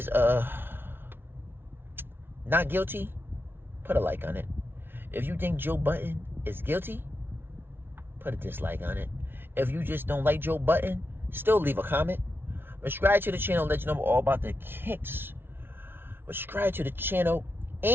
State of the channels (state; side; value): late; left; 0.11 ms